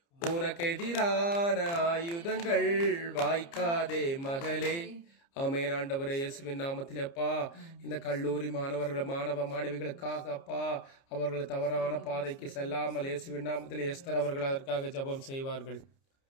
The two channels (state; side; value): late; right; 29 ms